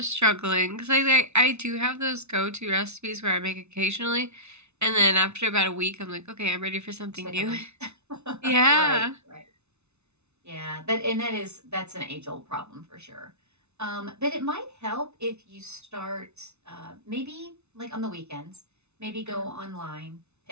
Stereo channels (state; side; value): late; left; 0.81 ms